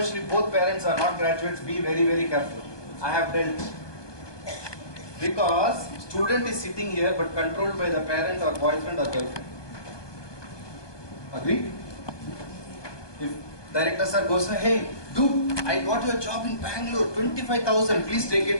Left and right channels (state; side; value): late; right; 1.2 ms